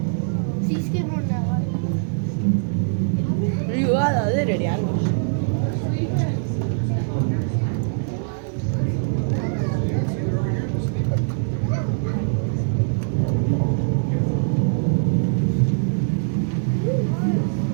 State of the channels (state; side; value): silent; left; digital silence